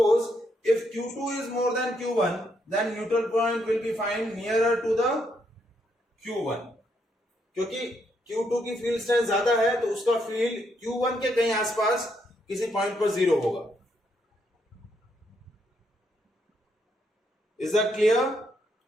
if Q2 is more than Q1, then neutral point will be find nearer to the Q1. क्योंकि Q2 की field strength ज्यादा है, तो उसका फील्ड Q1 के कहीं आसपास किसी पॉइंट पर जीरो होगा. Is that clear?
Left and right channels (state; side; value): normal; both; correlation 0.76